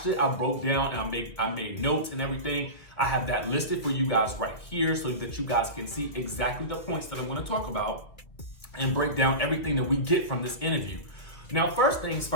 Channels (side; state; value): right; late; 2.2 ms